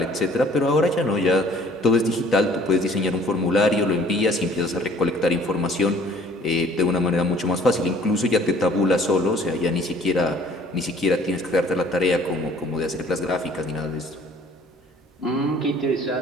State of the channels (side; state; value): both; normal; correlation 0.55